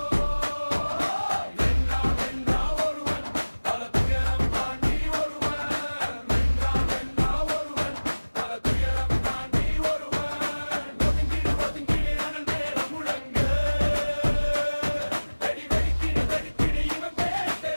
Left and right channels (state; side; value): inverted; both; correlation -1.00